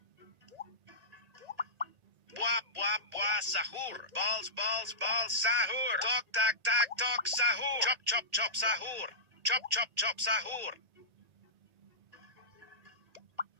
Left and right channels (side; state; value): left; late; 1.8 ms